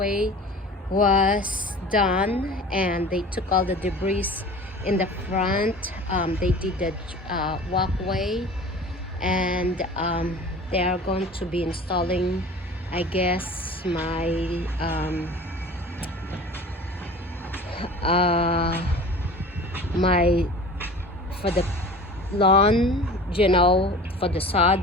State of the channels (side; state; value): both; normal; correlation 0.40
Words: was done and they took all the debris in the front. They did the walkway and they are going to be installing, I guess, uh, my for the lawn, for the sod.